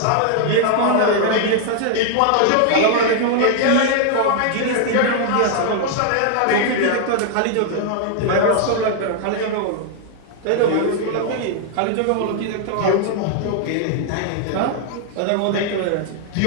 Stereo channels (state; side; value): different; both; correlation 0.00